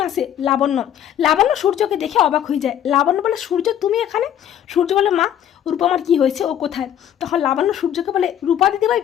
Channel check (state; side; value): quieter; right; 10.3 dB